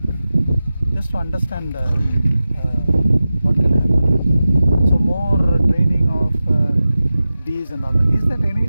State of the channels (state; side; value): inverted; both; correlation -0.94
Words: Just to understand what can happen. So more training of bees and all that. Is there